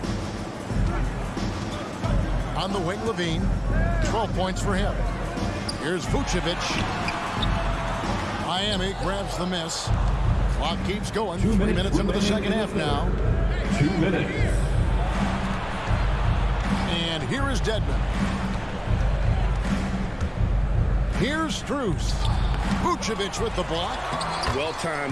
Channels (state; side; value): identical; both; correlation 1.00